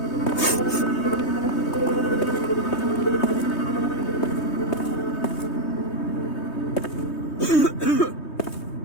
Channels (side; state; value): right; late; 3.2 ms